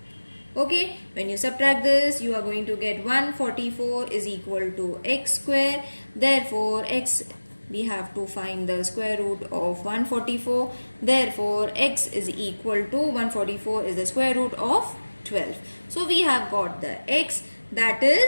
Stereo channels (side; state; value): both; inverted; correlation -1.00